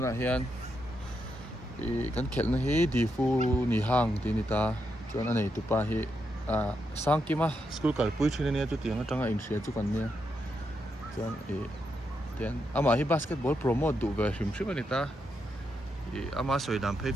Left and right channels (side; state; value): both; normal; correlation 0.82